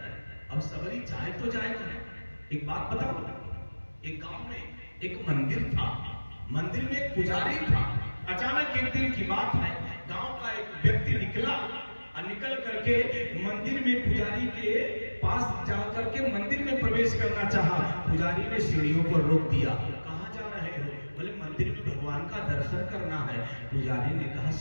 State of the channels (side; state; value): both; inverted; correlation -1.00